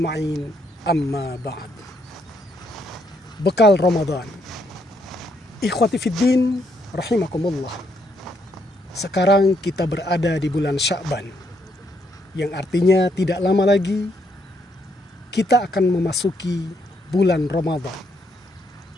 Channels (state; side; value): normal; both; correlation 0.74